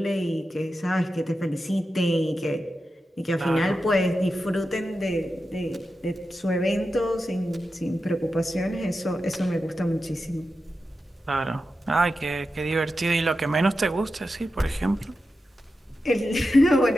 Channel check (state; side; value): normal; both; correlation 0.90